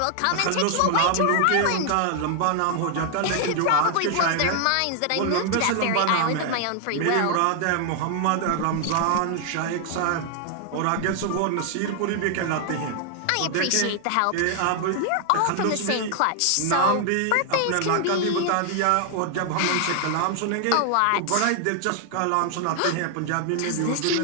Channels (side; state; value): both; different; correlation 0.00